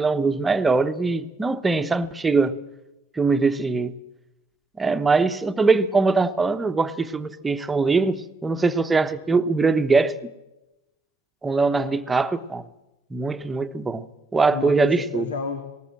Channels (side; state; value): left; quieter; 3.5 dB